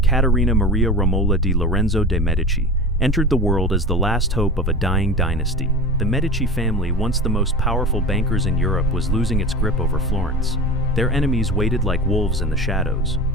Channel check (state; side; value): normal; both; correlation 0.31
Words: Maria Romola di Lorenzo de' Medici, entered the world as the last hope of a dying dynasty. The Medici family, once the most powerful bankers in Europe, was losing its grip over Florence. Their enemies waited like wolves in the shadows.